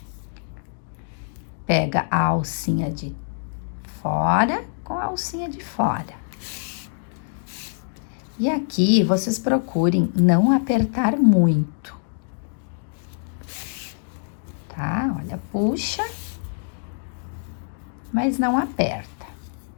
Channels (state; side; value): silent; right; digital silence